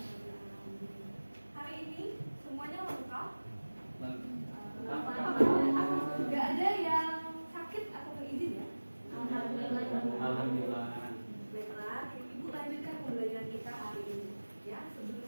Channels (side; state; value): both; inverted; correlation -1.00